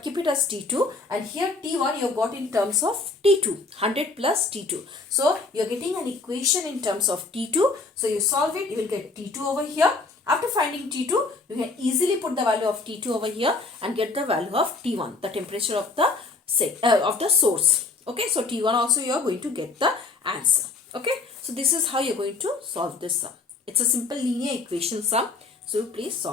keep it as T2. And here T1 you got in terms of T2, 100 plus T2. So you are getting an equation in terms of T2. So you solve it, you will get T2 over here. After finding T2, you can easily put the value of T2 over here and get the value of T1, the temperature of the source. Okay, so T1 also you are going to get the answer. Okay, so this is how you are going to solve this sum. It's a simple linear equation sum. So please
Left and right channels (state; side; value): quieter; right; 3.8 dB